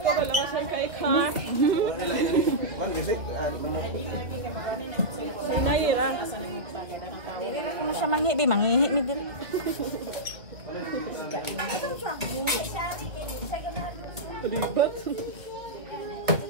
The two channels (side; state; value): left; late; 1.3 ms